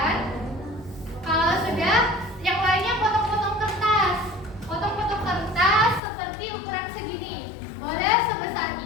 Kalau sudah, yang lainnya potong-potong kertas. Potong-potong kertas seperti ukuran segini. Boleh sebesar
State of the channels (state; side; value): drops out; right; at 6.0 s